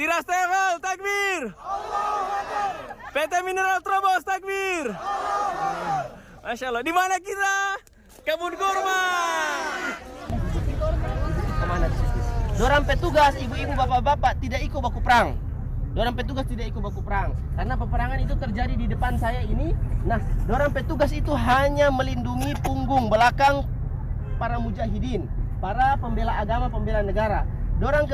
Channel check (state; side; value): identical; both; correlation 1.00